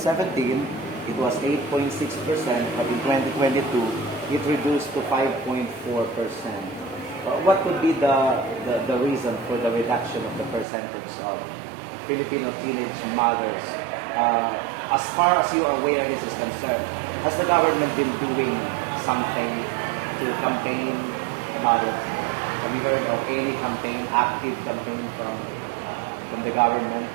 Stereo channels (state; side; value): drops out; left; at 10.7 s